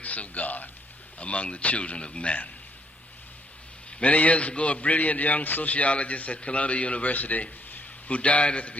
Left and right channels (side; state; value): both; normal; correlation 0.70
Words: of God among the children of men. Many years ago, a brilliant young sociologist at Columbia University, who died at the